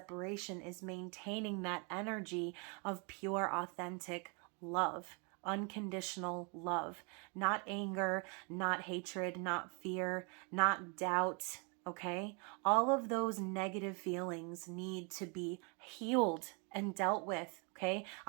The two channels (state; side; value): quieter; left; 34.4 dB